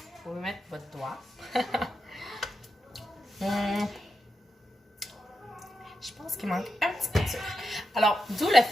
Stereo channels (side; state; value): both; normal; correlation 0.88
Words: pouvez mettre votre doigt. Je pense qu'il manque un petit peu de sucre. Alors, d'où le